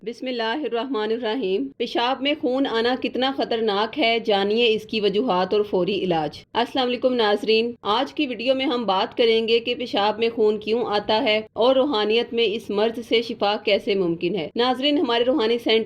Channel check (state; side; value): identical; both; correlation 1.00